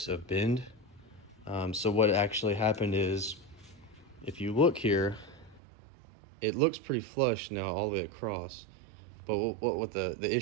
of bend. So what actually happened is, if you look here, it looks pretty flush now all the way across. But what the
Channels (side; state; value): left; drops out; at 5.6 s